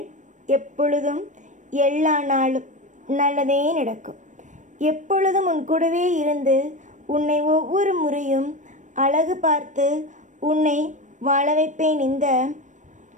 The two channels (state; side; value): late; left; 0.36 ms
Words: எப்பொழுதும் எல்லா நாளும் நல்லதே நடக்கும். எப்பொழுதும் உன் கூடவே இருந்து உன்னை ஒவ்வொரு முறையும் அழகு பார்த்து உன்னை வாழ வைப்பேன். இந்த